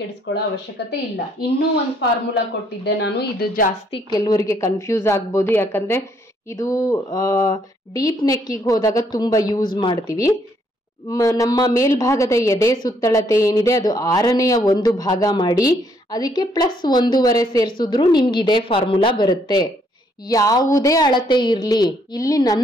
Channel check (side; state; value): both; normal; correlation 0.69